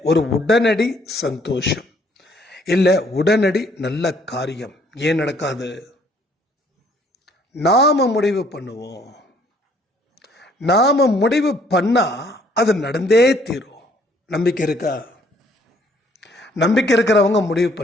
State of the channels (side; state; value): both; normal; correlation 0.62